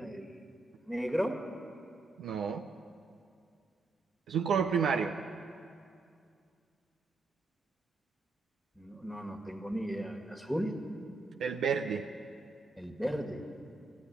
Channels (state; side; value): quieter; left; 3.6 dB